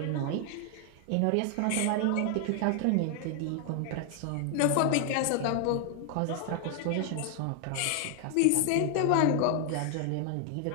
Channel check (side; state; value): both; different; correlation 0.00